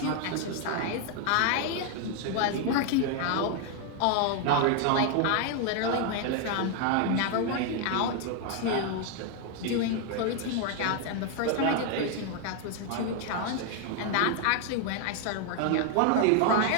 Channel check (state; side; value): different; both; correlation 0.01